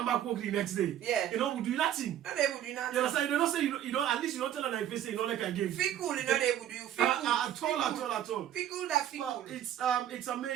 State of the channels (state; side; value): quieter; left; 11.1 dB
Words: back work the next day. Yeah. You know, we do nothing. No, they would do nothing. You understand? You don't say, you know, at least you don't tell them if say, you don't like again. Feel cool, you know they would do. Feel cool. At all. Feel cool that feel cool. But it's